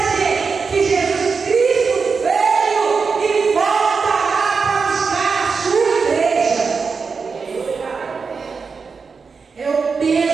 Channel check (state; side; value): quieter; left; 5.1 dB